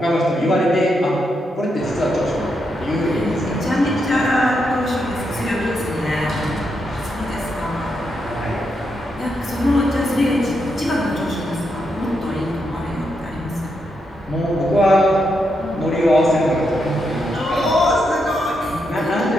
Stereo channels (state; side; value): normal; both; correlation 0.82